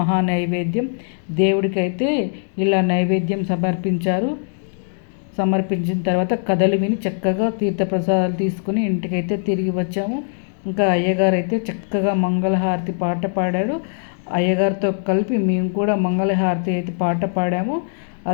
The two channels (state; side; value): silent; right; digital silence